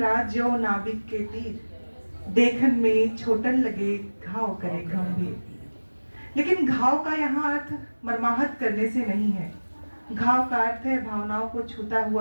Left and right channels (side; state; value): both; inverted; correlation -1.00